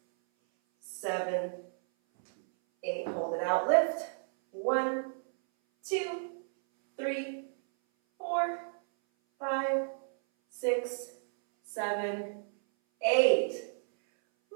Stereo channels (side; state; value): left; silent; 56 dB below the other